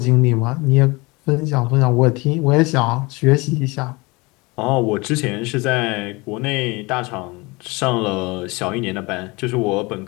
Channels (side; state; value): right; quieter; 25.0 dB